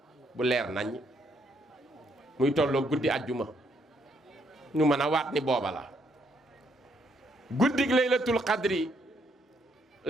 bu leer nañ muy tolloo guddi àjjuma ñu mën a waat ni booba la guddig laylatul qadri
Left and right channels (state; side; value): normal; both; correlation 0.72